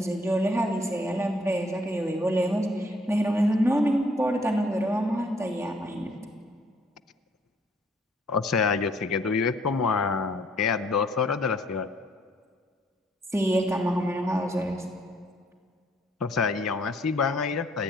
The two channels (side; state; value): both; normal; correlation 0.64